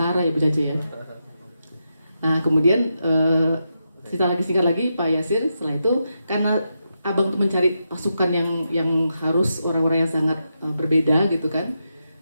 ya Bu Cace ya. Nah kemudian singkat lagi Pak Yasir, setelah itu karena Abang tuh mencari pasukan yang harus orang-orang yang sangat berbeda gitu kan.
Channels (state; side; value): inverted; both; correlation -0.85